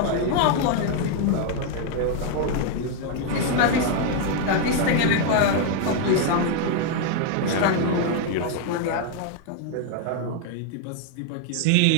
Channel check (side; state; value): both; different; correlation 0.00